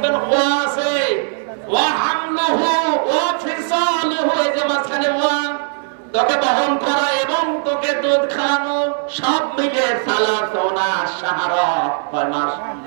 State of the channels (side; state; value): left; silent; 65 dB below the other